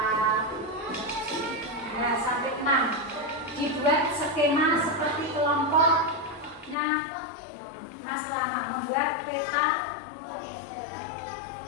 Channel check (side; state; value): right; drops out; at 6.8 s